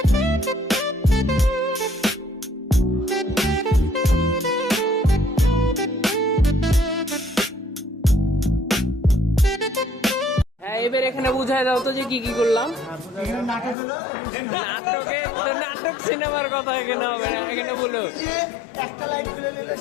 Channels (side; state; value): right; drops out; at 13.8 s